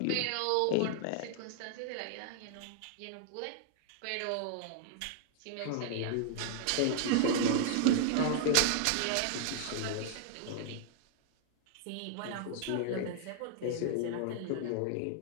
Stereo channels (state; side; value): different; both; correlation -0.01